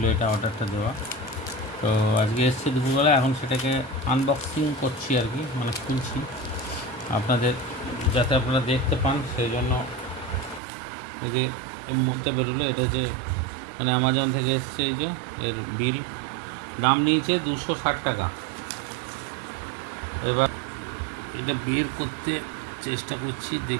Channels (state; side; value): drops out; left; at 10.6 s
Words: এটা অর্ডারটা দেওয়া, তো আজকে এসছে দুপুরবেলা। এখন সেটাকে আনবক্সিং করছি আর কি, মানে খুলছি আপনাদের, যাতে আপনারা দেখতে পান। সেই জন্য এই যে এর মধ্যে বেরোলো, এটা যে মানে অ্যামাজন থেকে এসছে, এই যে এর বিল, দাম নিয়েছে 260 টাকা। এবার এটা বের করতে চেষ্টা করছি,